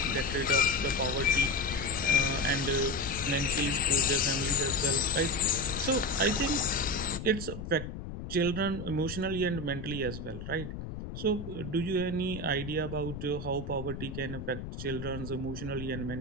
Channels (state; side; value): noise; left; rumble, 8 dB below the sound